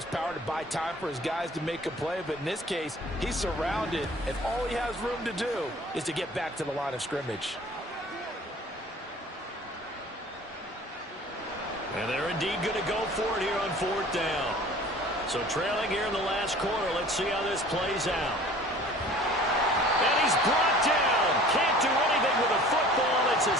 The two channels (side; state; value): both; normal; correlation 0.47